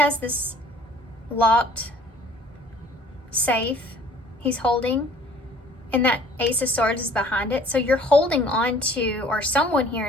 this locked safe he's holding? And that Ace of Swords is behind it. So you're holding on to, or someone here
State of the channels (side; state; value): both; normal; correlation 0.53